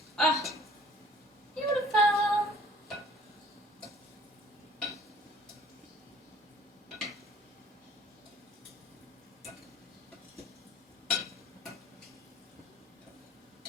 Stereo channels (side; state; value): both; normal; correlation 0.53